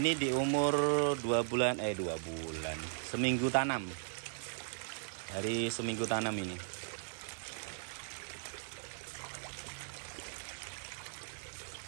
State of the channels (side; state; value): left; silent; digital silence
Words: di umur 2 bulan, seminggu tanam. Dari seminggu tanam ini.